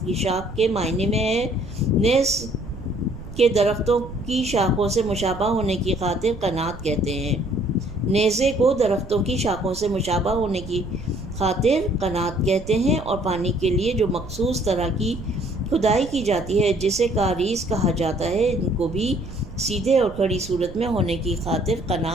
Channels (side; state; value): right; noise; rumble, 14 dB below the sound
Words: کی شاخ کے معنی میں ہے۔ نیز کے درختوں کی شاخوں سے مشابہ ہونے کی خاطر قناعت کہتے ہیں۔ نیزے کو درختوں کی شاخوں سے مشابہ ہونے کی خاطر قناعت کہتے ہیں، اور پانی کے لیے جو مخصوص طرح کی کھدائی کی جاتی ہے جسے کاریز کہا جاتا ہے، ان کو بھی سیدھے اور کھڑی صورت میں ہونے کی خاطر